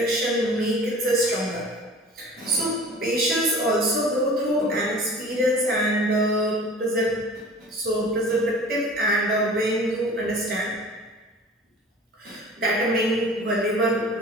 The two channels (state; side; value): normal; both; correlation 0.42